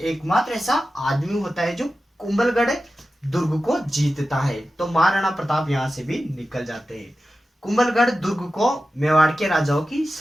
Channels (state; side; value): normal; both; correlation 0.93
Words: ऐसा आदमी होता है जो कुंभलगढ़ दुर्ग को जीतता है। तो महाराणा प्रताप यहां से भी निकल जाते हैं। कुंभलगढ़ दुर्ग को मेवाड़ के राजाओं की